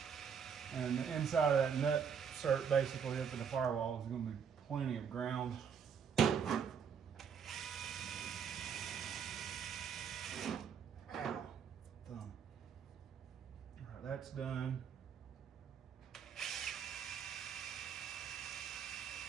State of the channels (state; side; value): quieter; left; 7.1 dB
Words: And the inside of that nut cert basically up in the firewall is gonna be plenty of ground. Ow. Thumb. All right, that's done.